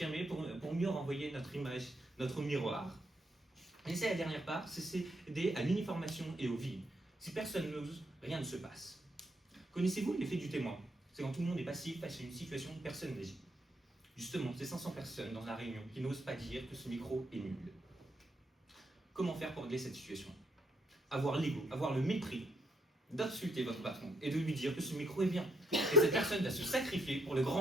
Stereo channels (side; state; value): both; normal; correlation 0.73